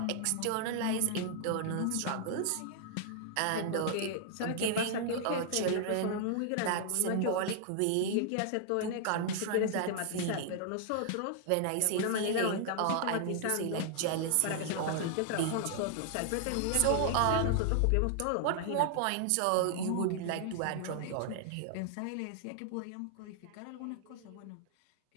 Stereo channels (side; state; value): both; different; correlation -0.01